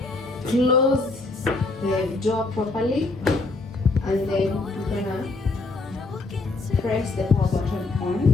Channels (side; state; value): right; quieter; 3.4 dB